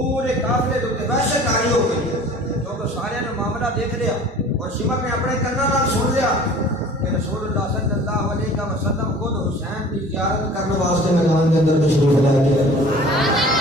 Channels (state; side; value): normal; both; correlation 0.46